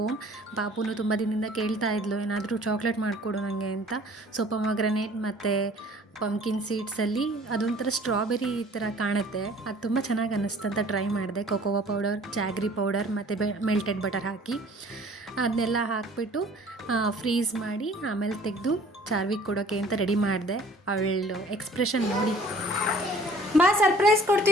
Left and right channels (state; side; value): normal; both; correlation 0.52